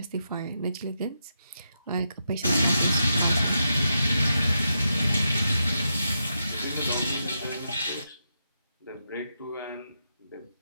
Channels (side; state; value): both; inverted; correlation -0.84